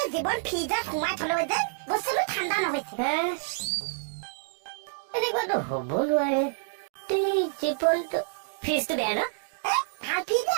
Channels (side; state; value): left; silent; digital silence